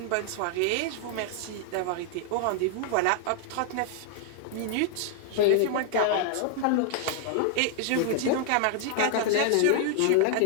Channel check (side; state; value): both; different; correlation 0.00